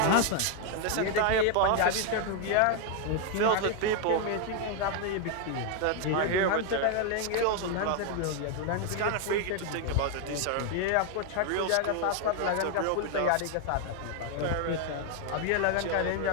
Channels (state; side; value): different; both; correlation 0.01